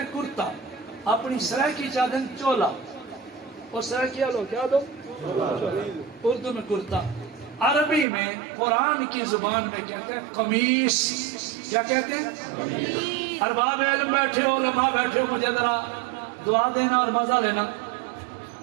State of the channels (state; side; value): drops out; left; at 8.1 s